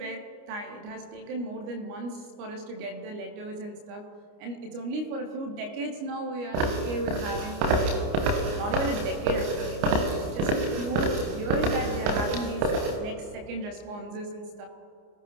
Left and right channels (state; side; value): late; left; 29 ms